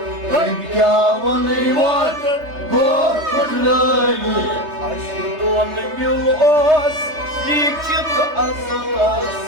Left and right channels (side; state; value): left; late; 3.3 ms